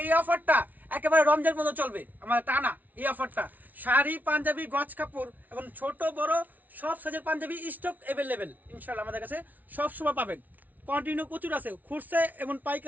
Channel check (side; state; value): left; late; 0.078 ms